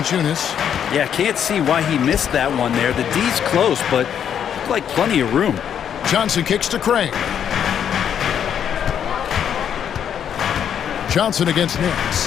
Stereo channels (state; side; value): quieter; right; 8.8 dB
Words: Yeah, can't see why he missed that one there. The D's close, but looked like plenty of room. Johnson kicks to Craig. Johnson against